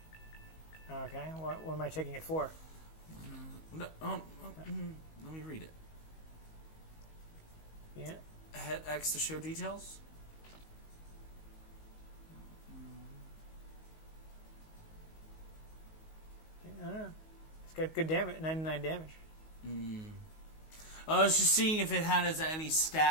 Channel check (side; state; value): right; late; 19 ms